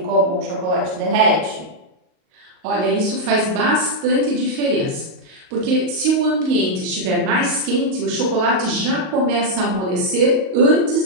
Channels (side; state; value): left; late; 38 ms